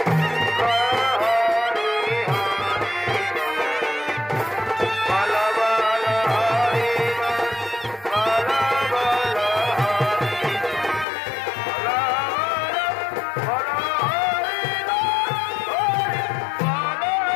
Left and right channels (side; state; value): right; drops out; at 11.1 s